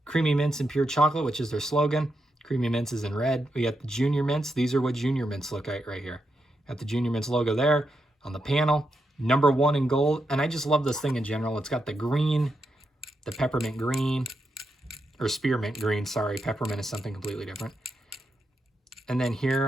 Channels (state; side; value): normal; both; correlation 0.84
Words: Creamy Mints and Pure Chocolate, which is their slogan. Creamy Mints is in red. We got the Junior Mints. These are what Junior Mints look like right here. Got the Junior Mints logo there on the panel. Number 1 in gold. And I just love this thing in general. It's got the green, the peppermint green, or spearmint green. Sorry, peppermint is something completely different. And then